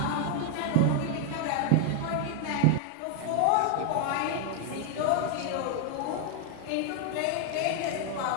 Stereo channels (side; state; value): both; different; correlation 0.00